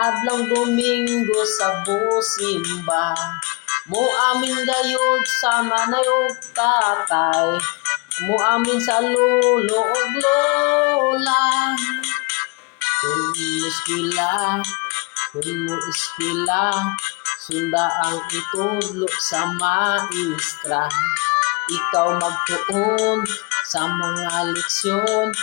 adlang Domingo sa busimba, mo amin gayud sa manayog tatay, mo amin sa lolo ug lola. Kung mo iskila, sunda ang itudlo sa maestra. Ikaw magtuon sa mga leksyon,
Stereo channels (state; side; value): quieter; right; 29.6 dB